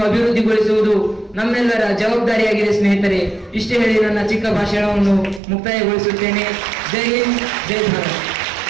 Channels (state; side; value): drops out; left; at 5.4 s